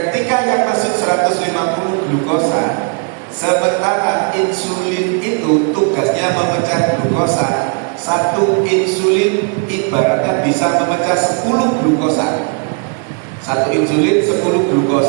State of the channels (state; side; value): quieter; left; 36.0 dB